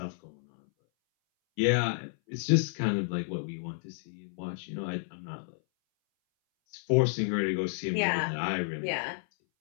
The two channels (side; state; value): right; silent; 57 dB below the other